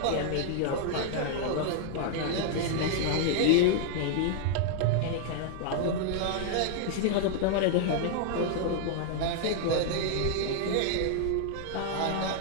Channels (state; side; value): different; both; correlation 0.00